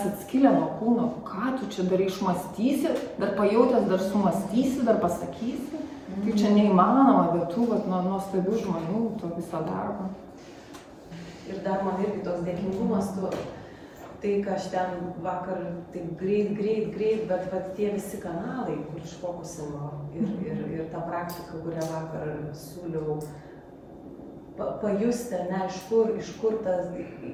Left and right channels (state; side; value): identical; both; correlation 1.00